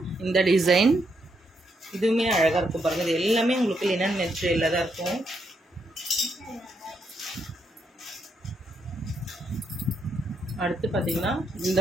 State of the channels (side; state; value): both; normal; correlation 0.78